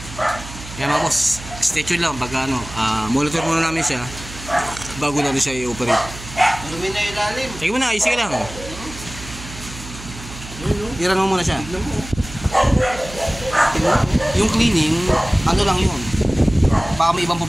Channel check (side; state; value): right; noise; hum, 14 dB below the sound